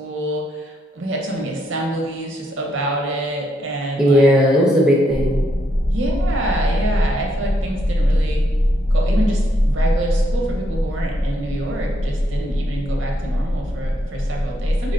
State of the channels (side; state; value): both; normal; correlation 0.77